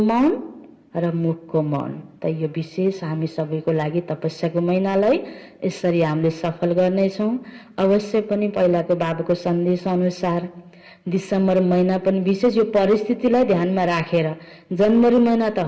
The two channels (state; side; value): identical; both; correlation 1.00